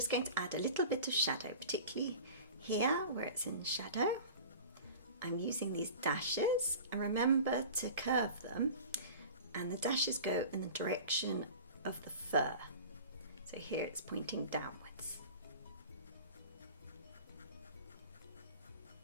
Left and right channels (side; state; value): both; inverted; correlation -0.38